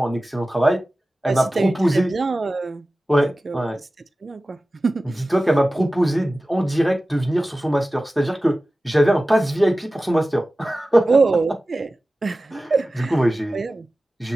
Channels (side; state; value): both; normal; correlation 0.96